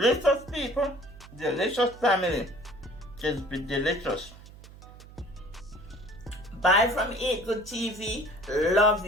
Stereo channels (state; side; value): noise; right; hum, 19 dB below the sound